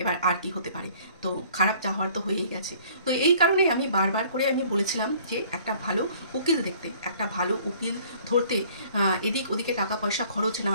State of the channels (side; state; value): both; inverted; correlation -0.54